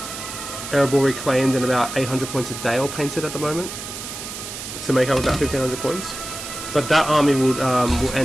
Erebor Reclaimed and about 800 points a day all painted at the moment to make up about 1500 points. But that army will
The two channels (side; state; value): right; noise; hiss, 9 dB below the sound